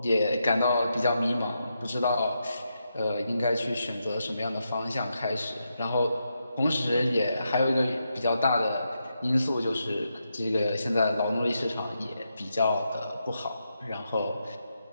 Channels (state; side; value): inverted; both; correlation -0.84